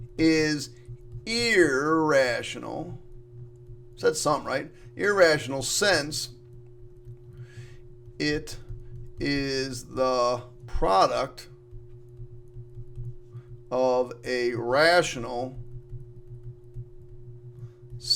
is irrational. Said sum, right? Irrational since it is the product of a rational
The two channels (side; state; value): both; identical; correlation 1.00